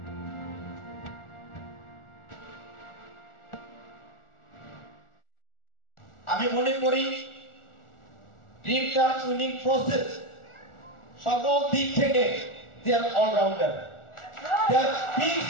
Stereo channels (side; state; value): right; late; 1.4 ms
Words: আমি মনে করি dream touch winning process সকল দিক থেকে they are all-rounder. They are big